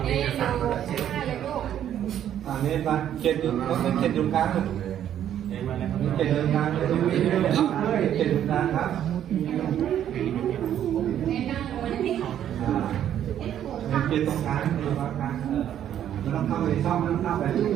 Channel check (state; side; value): quieter; left; 10.5 dB